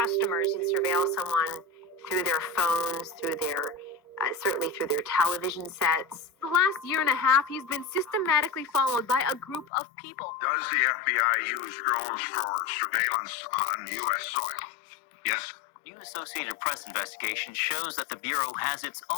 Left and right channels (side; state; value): right; drops out; at 9.7 s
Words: You can surveil someone through their phones, through their, certainly through their television sets. The last year and a half, he's been systematically followed by a group of people. Does the FBI use drones for surveillance on U.S. soil? Yes. New Associated Press investigation shows that the Bureau has its